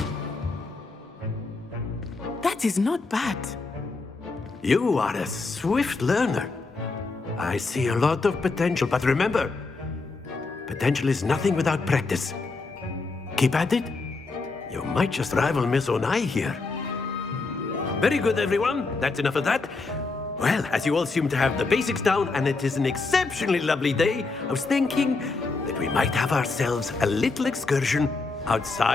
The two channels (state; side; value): quieter; right; 3.9 dB